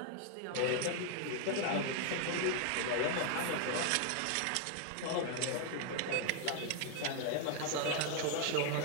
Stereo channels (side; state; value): both; different; correlation 0.00